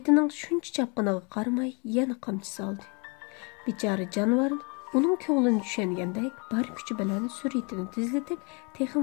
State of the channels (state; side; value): quieter; right; 32.7 dB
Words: shuncha chapqiniga qaramay yana qamchi soldi. Bechora jonivor uning ko'nglini tushungandek bar kuchi bilan suratini tezlatib,